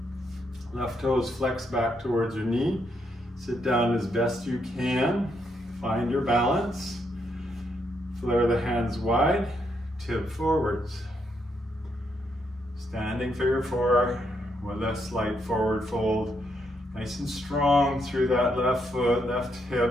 Left toes flex back towards your knee. Sit down as best you can. Find your balance. Flare the hands wide. Tip forwards. Standing figure 4 with a slight forward fold. Nice and strong through that left foot, left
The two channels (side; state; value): both; normal; correlation 0.77